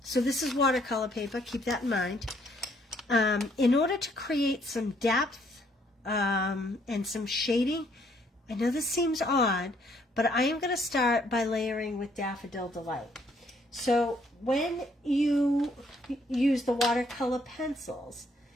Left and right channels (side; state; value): both; normal; correlation 0.67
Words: so this is watercolor paper. Keep that in mind. In order to create some depth and some shading, I know this seems odd, but I am going to start by layering with Daffodil Delight. So when you use the watercolor pencils,